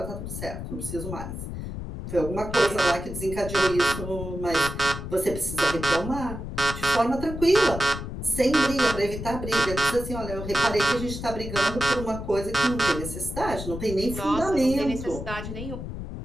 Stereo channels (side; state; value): left; noise; rumble, 7 dB below the sound